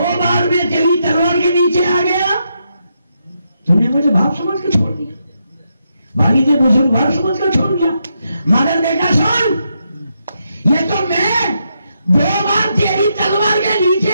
बार मैं तेरी तलवार के नीचे आ गया, तुमने मुझे बाप समझ के छोड़ दिया, वालिद बुजुर्ग बाप समझ कर छोड़ दिया, मगर बेटा सुन, ये तो मैं 2 बार तेरी तलवार के नीचे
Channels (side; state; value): both; inverted; correlation -0.81